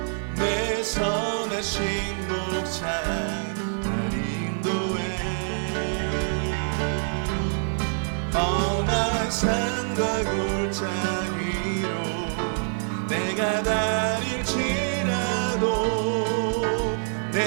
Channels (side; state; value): left; silent; digital silence